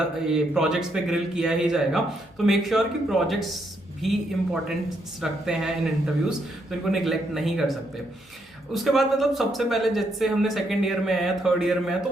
प्रोजेक्ट्स पे ग्रिल किया ही जाएगा, तो मेक श्योर कि प्रोजेक्ट्स भी इंपॉर्टेंस रखते हैं इन इंटरव्यूज, तो इनको निगलेक्ट नहीं कर सकते। उसके बाद मतलब सबसे पहले जैसे हमने सेकंड ईयर में है, थर्ड ईयर में है, तो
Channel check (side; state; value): both; normal; correlation 0.76